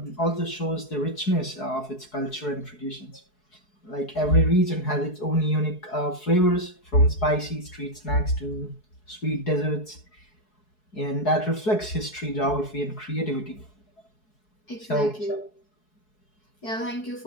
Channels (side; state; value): right; late; 4.7 ms